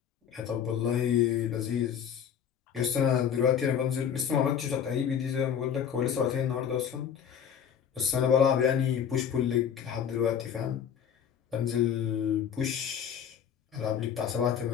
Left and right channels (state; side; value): quieter; right; 8.3 dB